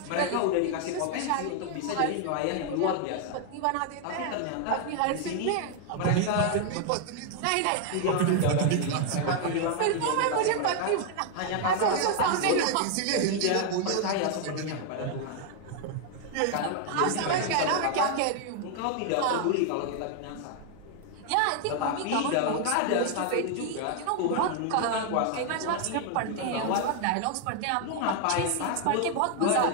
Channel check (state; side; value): different; both; correlation 0.00